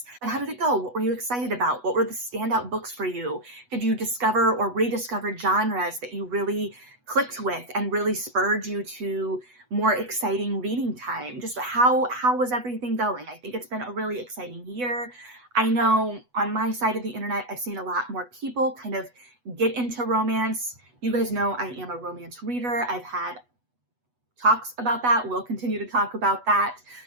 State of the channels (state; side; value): late; left; 8.1 ms